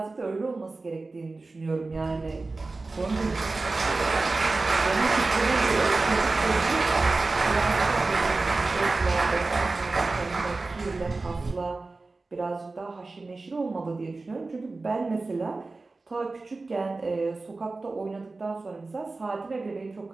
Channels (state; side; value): quieter; left; 3.5 dB